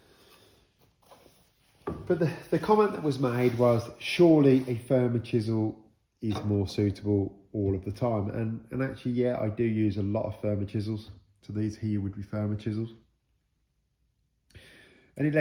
But the comment that was made was, surely a firmer chisel is more suitable all of the time, and actually, yeah, I do use a lot of firmer chisels. So these here would be firmer chisels. And it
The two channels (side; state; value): both; identical; correlation 1.00